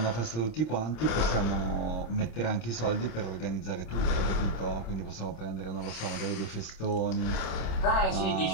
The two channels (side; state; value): right; late; 26 ms